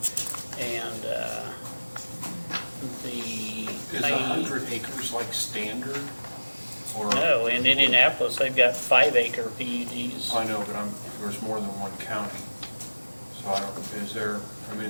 and Is 100 acres like standard? Or, No, in Indianapolis, they've got 5-acre PUDs. I know, but there's more than one county. So I don't, is there, I mean,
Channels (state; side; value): inverted; both; correlation -1.00